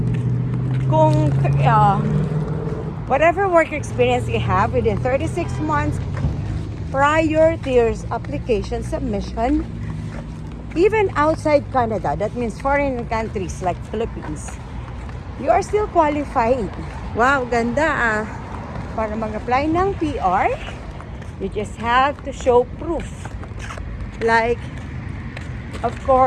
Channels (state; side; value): identical; both; correlation 1.00